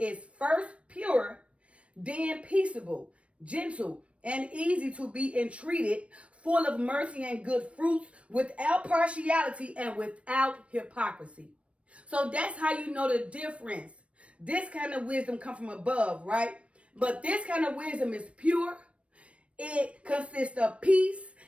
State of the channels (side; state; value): left; late; 0.062 ms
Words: first pure, then peaceable, gentle, and easy to be entreated, full of mercy and good fruits, without partiality and without hypocrisy. So that's how you know the difference. This kind of wisdom comes from above, right? But this kind of wisdom is pure. It consists of peace.